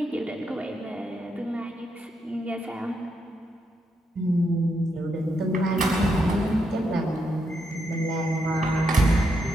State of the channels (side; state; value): both; normal; correlation 0.80